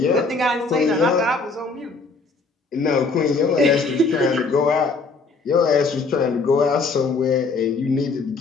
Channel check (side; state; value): right; quieter; 4.0 dB